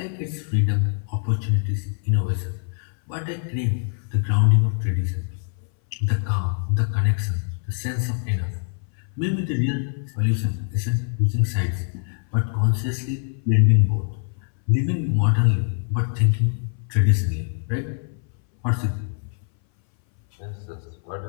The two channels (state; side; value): silent; right; 60 dB below the other